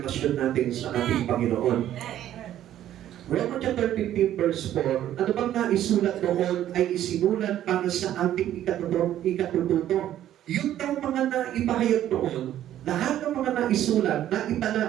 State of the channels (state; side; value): quieter; left; 12.0 dB